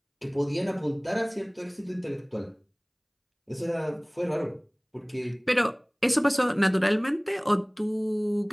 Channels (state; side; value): identical; both; correlation 1.00